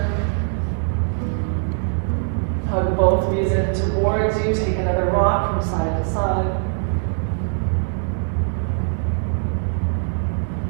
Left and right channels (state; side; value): silent; left; 60 dB below the other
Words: Hug both knees in towards you. Take another rock from side to side.